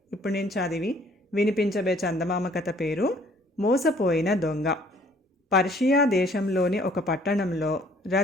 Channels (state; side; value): normal; both; correlation 0.59